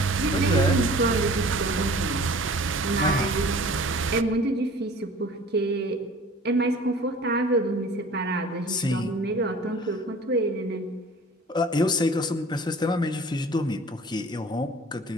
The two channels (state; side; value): normal; both; correlation 0.46